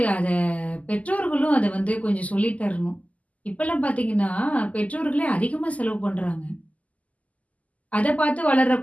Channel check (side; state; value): right; late; 0.072 ms